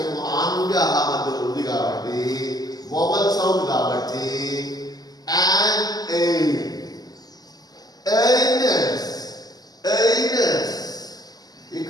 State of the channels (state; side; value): late; right; 0.19 ms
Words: ఆ నుండి అలా మధ్యలో ఉంది కాబట్టి వోవల్ సౌండ్ కాబట్టి అండ్ ఎయిల్. ఎయినెస్.